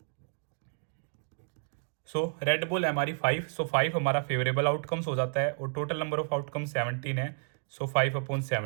सो रेड बॉल है हमारी 5, सो 5 हमारा फेवरेबल आउटकम्स हो जाता है और टोटल नंबर ऑफ आउटकम 17 है। सो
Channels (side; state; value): left; silent; 57 dB below the other